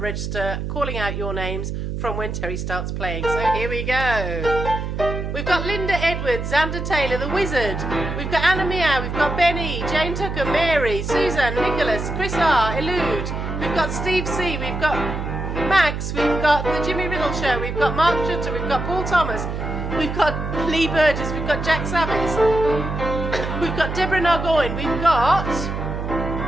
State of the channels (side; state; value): right; noise; hum, 4 dB below the sound